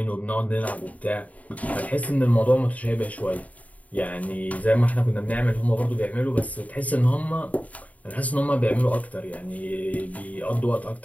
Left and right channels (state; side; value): late; right; 0.071 ms